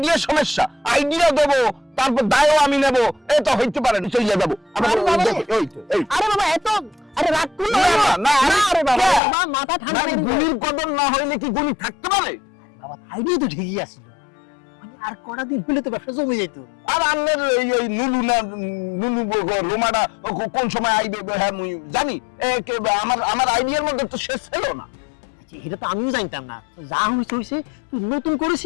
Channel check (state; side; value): drops out; right; at 9.2 s